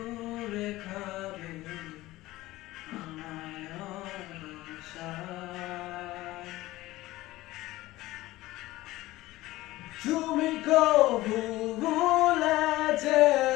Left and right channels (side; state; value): right; quieter; 17.7 dB